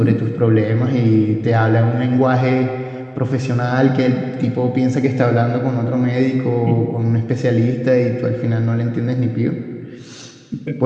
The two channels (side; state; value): both; identical; correlation 1.00